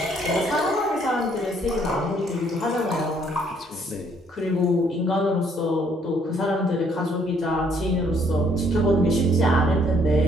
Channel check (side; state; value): both; normal; correlation 0.65